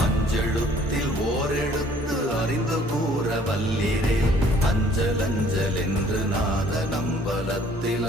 அஞ்செழுத்தில் ஓரெழுத்து அறிந்து கூற வல்லிரே அஞ்சல் அஞ்சல் என்று நாத நம்பலத்தில்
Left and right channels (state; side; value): normal; both; correlation 0.58